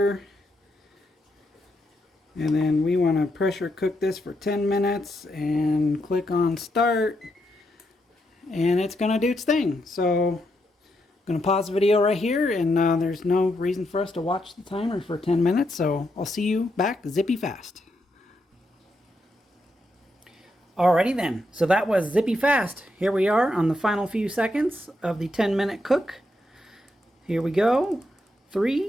and then we want to pressure cook this for 10 minutes and click on start, and it's gonna do its thing. So I'm gonna pause the video right here, and there's no reason for us to watch the timer for 10 minutes, so I'll see you back zippy fast. Alrighty then, so that was zippy fast. Here we are on the final few seconds of the 10-minute cook. Here we go.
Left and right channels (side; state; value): both; normal; correlation 0.81